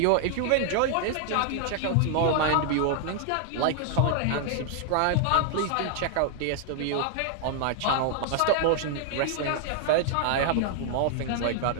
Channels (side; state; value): both; different; correlation 0.00